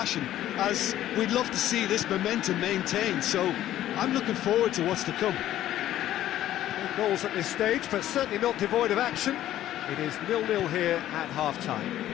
as we'd love to see this momentum maintained, so I'm looking forward to what's to come. No goals at this stage, but certainly not devoid of action. It is 0-0 here at half-time.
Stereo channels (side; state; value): right; quieter; 12.9 dB